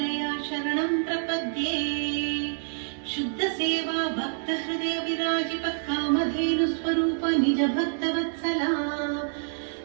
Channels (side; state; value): left; silent; digital silence